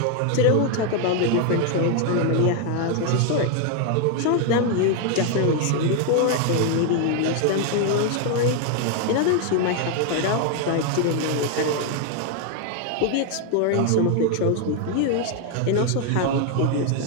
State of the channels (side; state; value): both; different; correlation 0.00